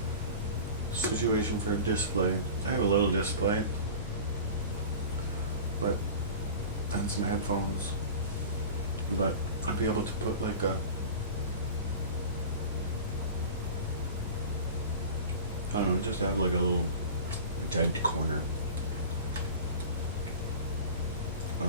a situation for a display. I have a little display, but and some headphones. But I'd be able to put like a, I don't know, just have like a little dead corner.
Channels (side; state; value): both; inverted; correlation -0.35